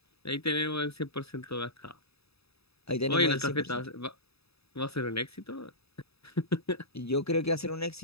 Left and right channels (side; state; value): right; late; 0.78 ms